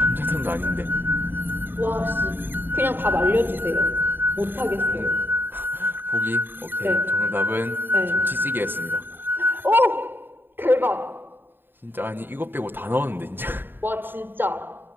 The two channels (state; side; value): late; left; 0.097 ms